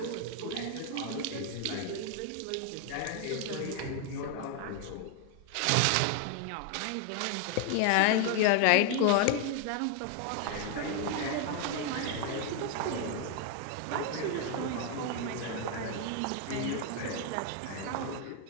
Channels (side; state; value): both; different; correlation 0.00